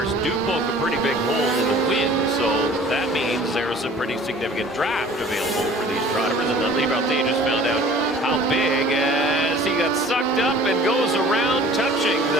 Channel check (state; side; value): normal; both; correlation 0.49